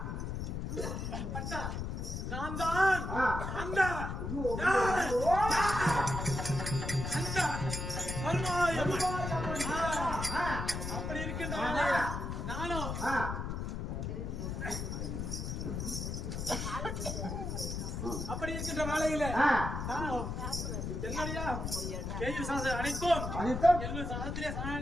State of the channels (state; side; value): noise; left; rumble, 4 dB below the sound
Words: பட்டா நான் தான் அந்த அப்படி இருக்கின்ற நானும் அப்படி இருக்கின்ற வேலையில என்னுடைய கேள்வி சாதம் அனைத்தும் என்னுடைய சாதத்திலே